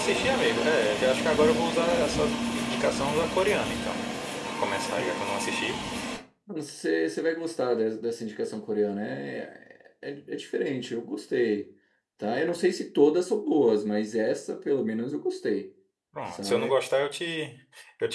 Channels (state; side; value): identical; both; correlation 1.00